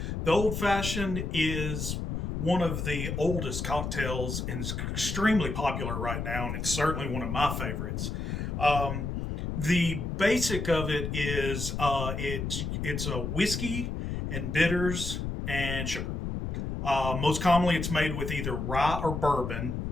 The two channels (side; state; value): left; noise; rumble, 3 dB below the sound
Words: The old fashioned is one of the oldest cocktails and is extremely popular right now, and it's certainly one of my favorites. Um, the basic of it is it's a whiskey and bitters and sugar. Most commonly, it's made with either rye or bourbon